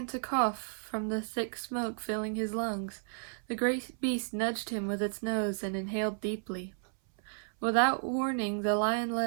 to cough from the thick smoke filling his lungs, the great beast nudged him with its nose and inhaled deeply. Without warning, the lion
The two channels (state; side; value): silent; left; 56 dB below the other